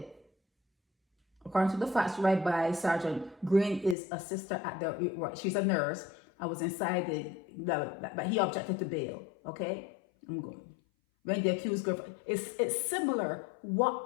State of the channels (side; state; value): right; drops out; at 4.0 s